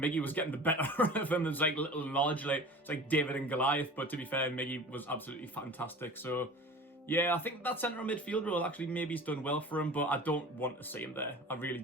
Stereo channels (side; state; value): both; normal; correlation 0.39